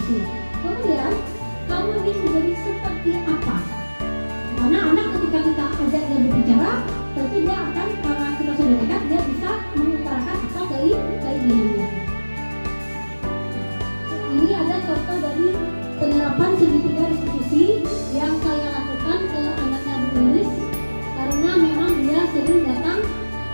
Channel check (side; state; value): both; inverted; correlation -1.00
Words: apresiasi. Kemudian kamu ingin menjadi seperti apa? Karena anak ketika kita ajak dia berbicara, tentu dia akan, karena kita sudah dekat, dia bisa mengutarakan apa keinginannya. Ini ada contoh dari penerapan segitiga restitusi yang saya lakukan ke anaknya Bu Lilis, karena memang dia agak sering datang